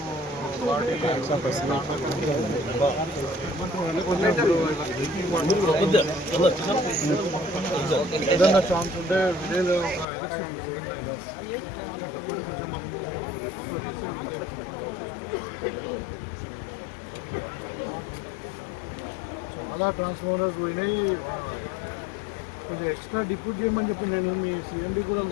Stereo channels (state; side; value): drops out; right; at 10.1 s